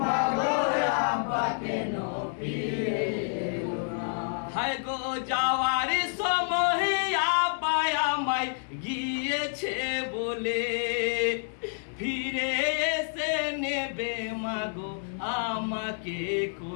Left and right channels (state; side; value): silent; right; digital silence